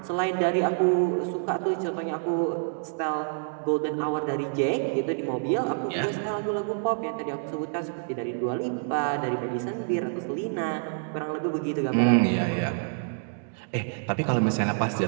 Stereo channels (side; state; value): left; silent; digital silence